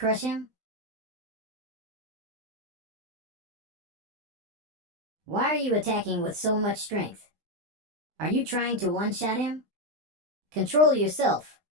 him? Why are you attacking with so much strength? Are you trying to one-shot him? Control yourself.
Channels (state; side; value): late; left; 19 ms